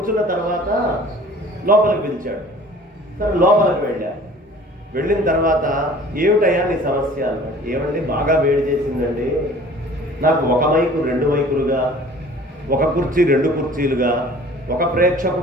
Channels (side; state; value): both; normal; correlation 0.48